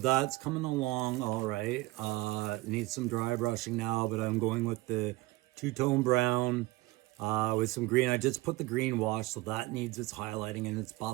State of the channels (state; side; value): quieter; left; 20.4 dB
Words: coming along all right. Needs some dry brushing now, but I'm going with the two-tone brown with some green. I just put the green wash, so that needs its highlighting and its